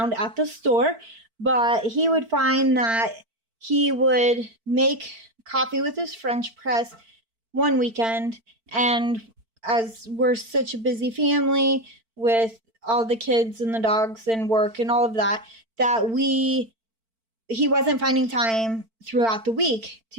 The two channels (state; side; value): late; left; 4.5 ms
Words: at the store, but he would find that he would make coffee with his French press one weekend, and as we're such a busy family with all the kids and the dogs and work and all of that, he wasn't finding time throughout the week